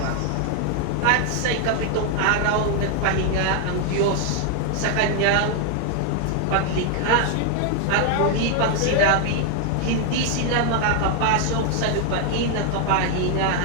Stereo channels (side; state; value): both; different; correlation 0.00